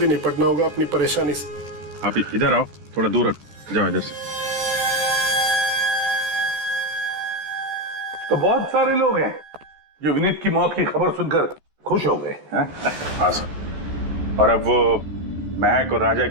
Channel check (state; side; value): late; left; 14 ms